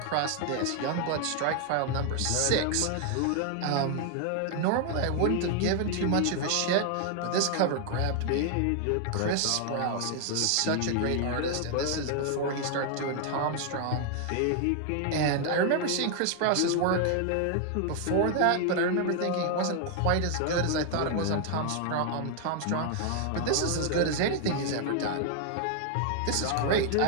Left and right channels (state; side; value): different; both; correlation 0.00